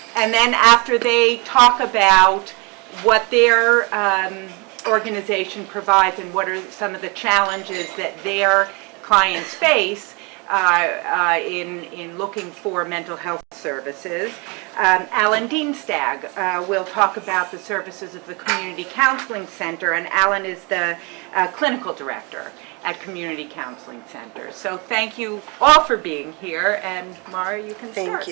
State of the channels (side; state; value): left; quieter; 30.1 dB